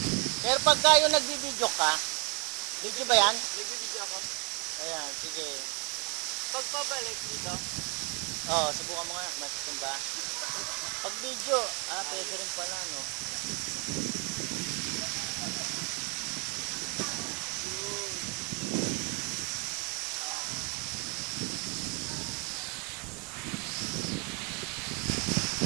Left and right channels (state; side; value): quieter; left; 32.1 dB